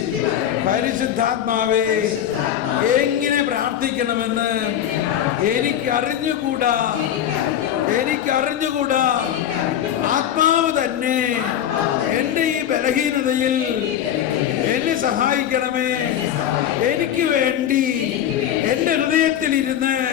പരിശുദ്ധാത്മാവേ, എങ്ങനെ പ്രാർത്ഥിക്കണമെന്ന് എനിക്കറിഞ്ഞുകൂടാ. ആത്മാവ് തന്നെ എന്റെ ഈ ബലഹീനതയിൽ എന്നെ സഹായിക്കണമേ. എനിക്ക് വേണ്ടി എന്റെ ഹൃദയത്തിലിരുന്ന്,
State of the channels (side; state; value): right; quieter; 10.4 dB